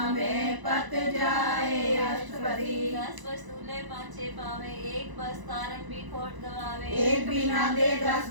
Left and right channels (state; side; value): late; left; 1.0 ms